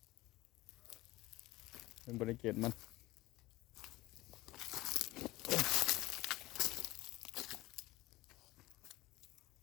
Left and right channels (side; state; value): right; quieter; 18.7 dB